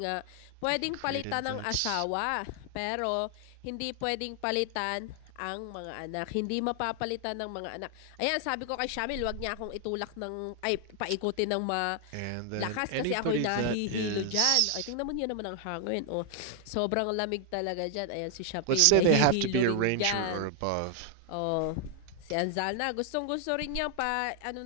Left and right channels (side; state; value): both; different; correlation 0.00